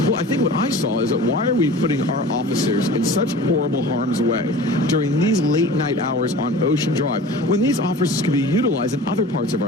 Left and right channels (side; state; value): both; normal; correlation 0.40